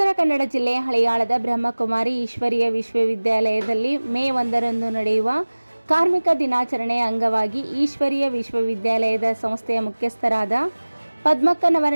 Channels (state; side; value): inverted; both; correlation -1.00